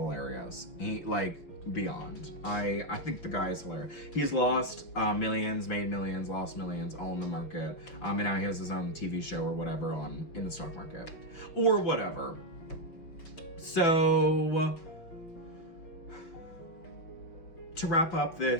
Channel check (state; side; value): late; right; 5.9 ms